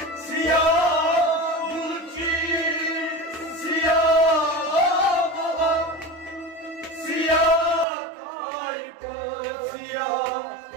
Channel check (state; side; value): drops out; left; at 7.9 s